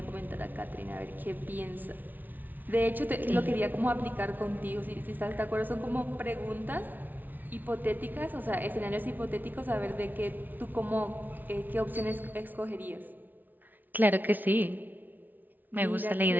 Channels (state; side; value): late; left; 0.085 ms